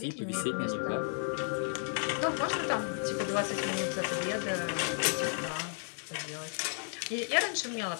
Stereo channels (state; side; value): silent; right; 56 dB below the other